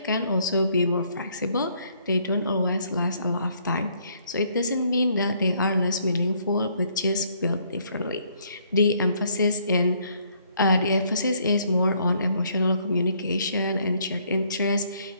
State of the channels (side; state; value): both; inverted; correlation -0.67